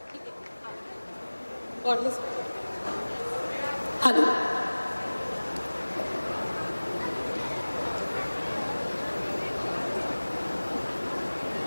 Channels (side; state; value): both; inverted; correlation -1.00